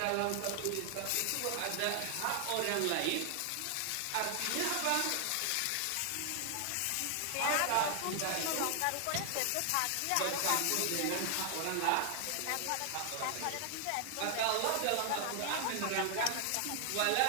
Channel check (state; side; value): different; both; correlation 0.00